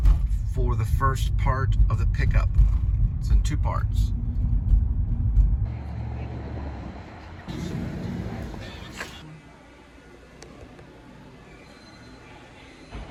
for the first part of the pickup. It's in 2 parts.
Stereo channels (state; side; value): identical; both; correlation 1.00